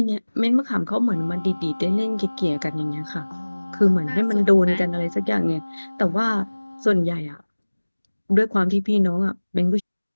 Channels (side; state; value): both; inverted; correlation -1.00